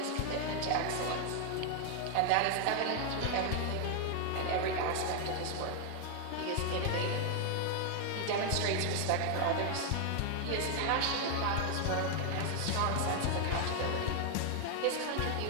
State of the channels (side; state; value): both; different; correlation 0.00